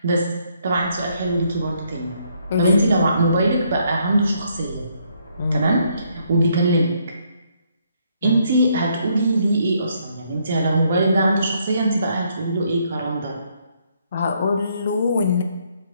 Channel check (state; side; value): inverted; both; correlation -0.71